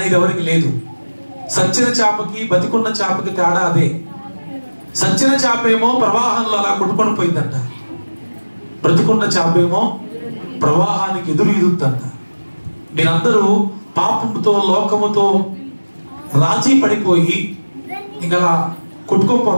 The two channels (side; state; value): both; inverted; correlation -1.00